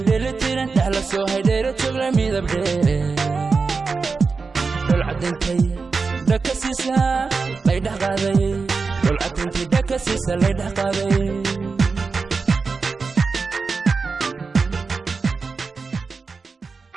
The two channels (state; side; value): quieter; left; 4.6 dB